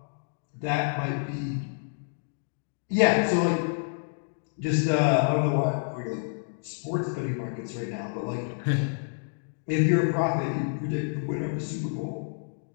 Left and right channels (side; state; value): right; silent; digital silence